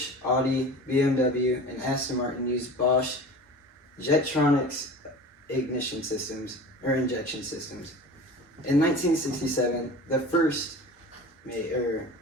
Audi, BMW, and Aston Martin used Bosch Jetronics injection systems. In 1967, the first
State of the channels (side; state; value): both; normal; correlation 0.37